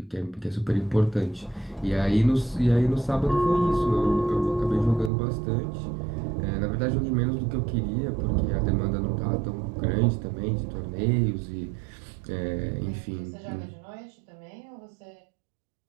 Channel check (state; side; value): drops out; left; at 5.1 s